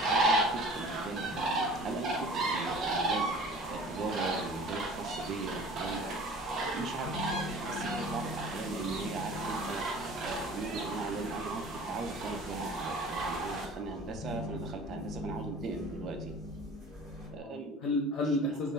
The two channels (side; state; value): both; normal; correlation 0.44